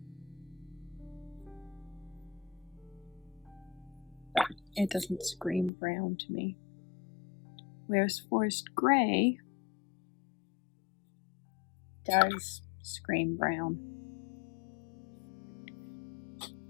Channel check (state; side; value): drops out; right; at 5.7 s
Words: But it doesn't scream brown to me. Whereas Forest Gray does scream brown.